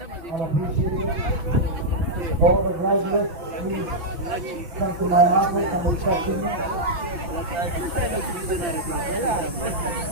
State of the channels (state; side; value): late; left; 5.8 ms